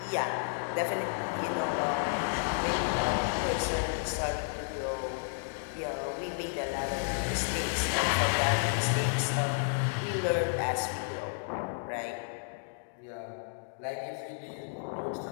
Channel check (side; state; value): right; silent; digital silence